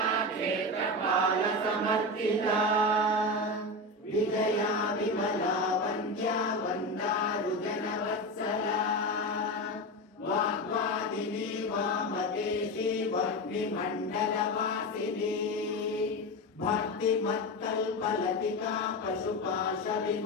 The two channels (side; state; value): both; normal; correlation 0.20